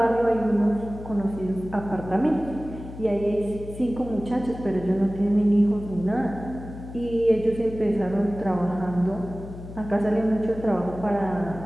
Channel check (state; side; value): noise; left; hum, 13 dB below the sound